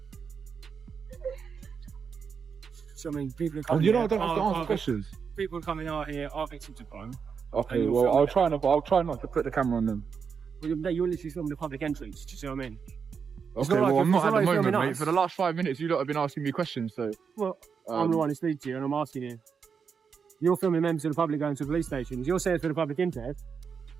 So I mean, people are Oh, coming. you know, I here, don't have to are- answer are- questions. People coming out here are victims of crime. Okay, you're well, filming I'll try not to put the camera on them. Well, you're literally filming the public entrance. Do you see what I mean? Okay, not like well, I'm it's not not at the like moment, filming mate. us. For the last 5 minutes, you lot have been asking me questions, so. Well, I'm the one who speaks to you, and I'm asking you. You're filming members of the public going to police stations. You're saying it's for the public interest.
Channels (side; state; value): left; quieter; 6.2 dB